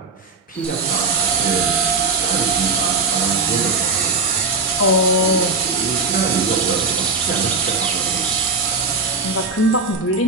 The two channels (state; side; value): quieter; left; 4.0 dB